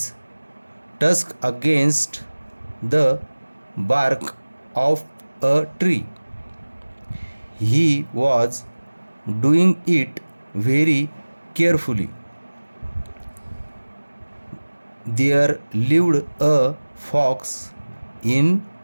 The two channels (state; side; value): inverted; both; correlation -1.00